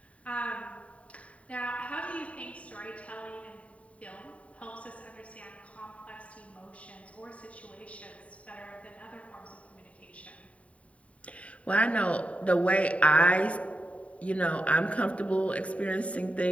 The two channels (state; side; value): late; right; 0.066 ms